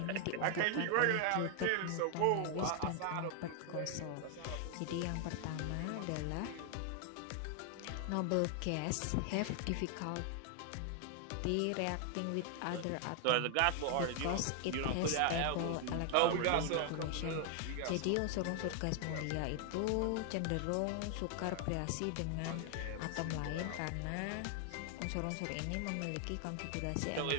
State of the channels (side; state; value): both; different; correlation 0.00